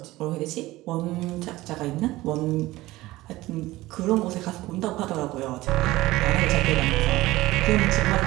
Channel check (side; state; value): left; quieter; 18.1 dB